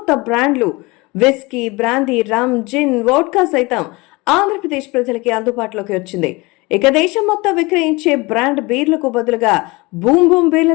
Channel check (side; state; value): right; quieter; 24.2 dB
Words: బ్రాండ్లు, విస్కీ, బ్రాందీ, రమ్, జిన్, వోడ్కా సైతం ఆంధ్రప్రదేశ్ ప్రజలకి అందుబాటులోకి వచ్చింది. ఇక దేశం మొత్తం విక్రయించే బ్రాండ్ బీర్లకు బదులుగా బూమ్ బూమ్